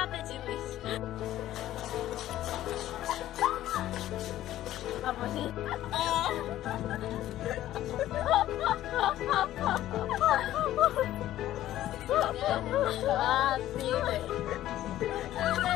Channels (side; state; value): right; quieter; 13.6 dB